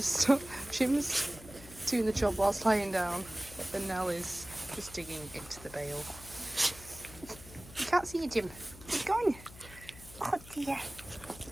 stop. Jim's doing the job whilst lying down, and Nell is just digging into the bale. You can't see you, Jim. He's gone. Oh dear.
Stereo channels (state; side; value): noise; left; hum, 18 dB below the sound